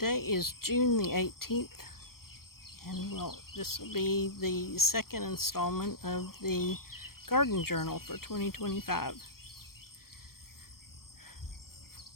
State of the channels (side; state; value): right; late; 0.93 ms